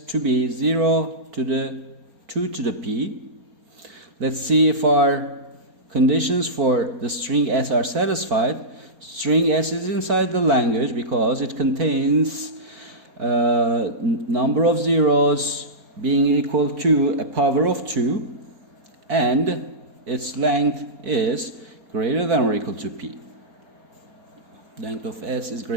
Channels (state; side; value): late; left; 4.2 ms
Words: to be 0 to the 2 to the p. Let's see if our conditions for the string S are satisfied. String S is inside the language because it contains number of zeros being equal to a power of 2, and its length is greater than or equal to p. Length of S is